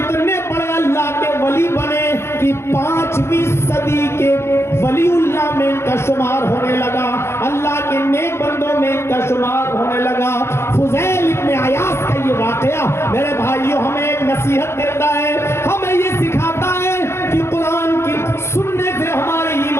बड़े अल्लाह के वली बने कि 5वीं सदी के वलीउल्लाह में इनका शुमार होने लगा, अल्लाह के नेक बंदों में इनका शुमार होने लगा। फुज़ैल इब्न अयाद का ये वाकया मेरे भाइयों हमें एक नसीहत देता है, हमें ये सिखाता है कि कुरान की सुनने से हमारे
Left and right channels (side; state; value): right; late; 0.12 ms